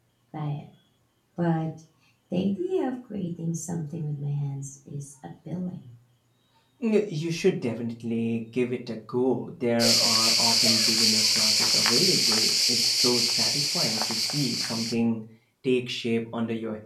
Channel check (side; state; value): both; identical; correlation 1.00